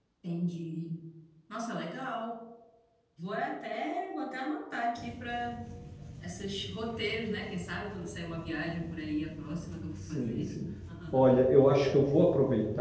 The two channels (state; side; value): identical; both; correlation 1.00